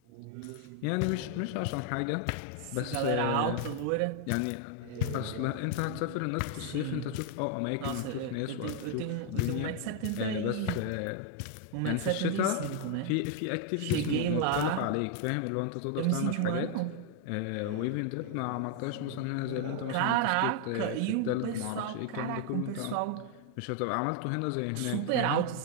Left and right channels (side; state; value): both; different; correlation 0.00